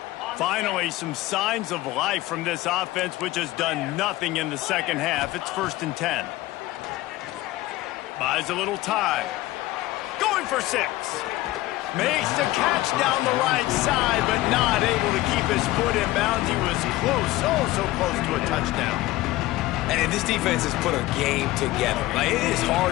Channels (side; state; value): right; quieter; 17.5 dB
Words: Finally, some signs of life from this offense, which has done nothing in the second half. It's 1st and 10. Buys a little time. Going for 6. Makes the catch down the right side, but not able to keep his foot in bounds. He was close, oh, so close to a touchdown. And this defense has put a game together. Like, it is